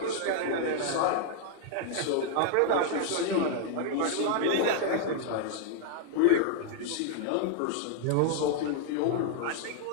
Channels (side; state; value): both; different; correlation -0.01